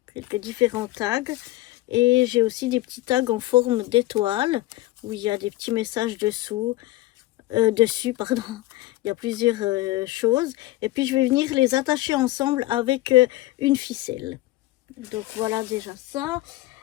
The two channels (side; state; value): right; quieter; 17.4 dB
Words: quelques différents tags. Et j'ai aussi des petits tags en forme d'étoile où il y a des petits messages dessus, pardon. Il y a plusieurs choses. Et puis je vais venir les attacher ensemble avec une ficelle. Donc voilà déjà ça.